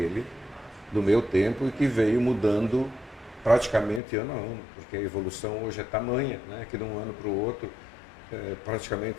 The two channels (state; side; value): drops out; right; at 4.0 s